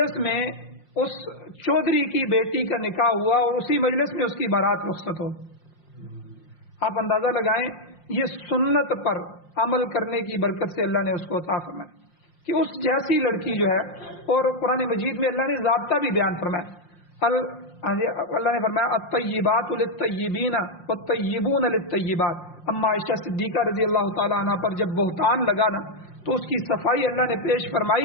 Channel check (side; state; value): right; late; 5.7 ms